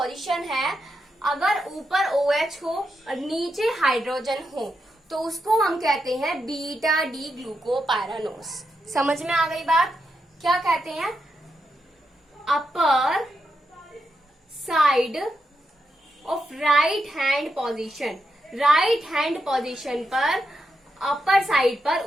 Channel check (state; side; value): normal; both; correlation 0.84